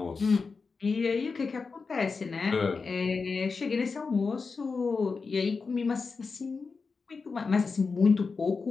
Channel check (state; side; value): quieter; right; 4.7 dB